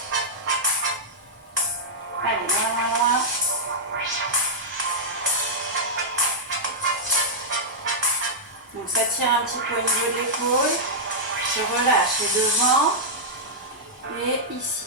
allez, loin. Donc ça tire un petit peu au niveau de l'épaule. Je relâche et devant. Et ici,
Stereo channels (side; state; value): both; normal; correlation -0.09